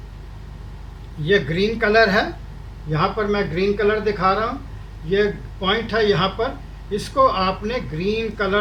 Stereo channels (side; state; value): both; identical; correlation 1.00